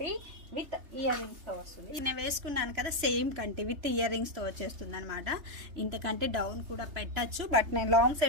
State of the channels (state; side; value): late; left; 3.3 ms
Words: విత్ ఇయర్ రింగ్స్తో వస్తుంది. నేను వేసుకున్నాను కదా, సేమ్ కంటి విత్ ఇయర్ రింగ్స్తో వచ్చేస్తుంది అనమాట. ఇంతకంటే డౌన్ కూడా పెట్టచ్చు, బట్ నేను లాంగ్